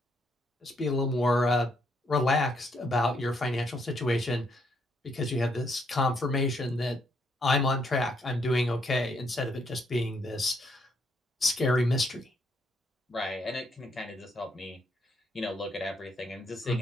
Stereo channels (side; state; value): both; normal; correlation 0.74